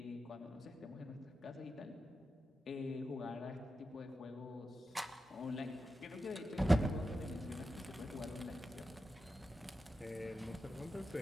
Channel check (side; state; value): both; normal; correlation 0.90